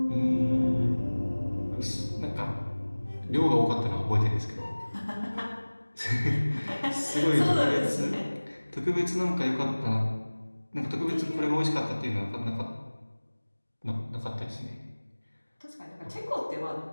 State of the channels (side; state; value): both; inverted; correlation -1.00